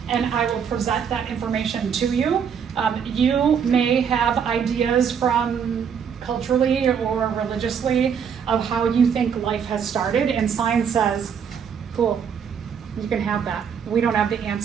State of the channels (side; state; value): left; quieter; 7.3 dB